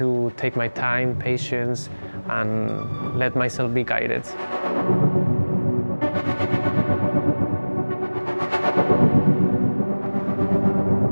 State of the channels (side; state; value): both; inverted; correlation -1.00